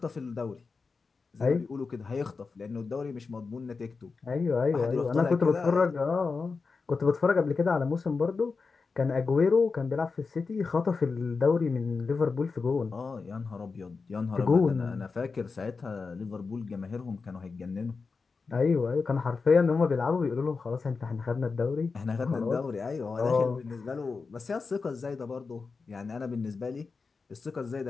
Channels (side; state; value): right; quieter; 4.6 dB